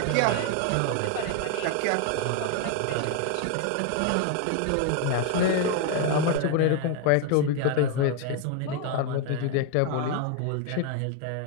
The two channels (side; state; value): both; different; correlation 0.01